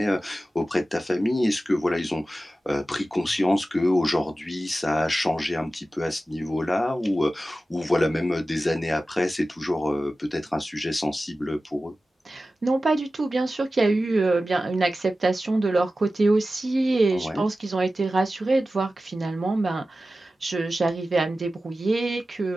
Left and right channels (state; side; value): normal; both; correlation 0.95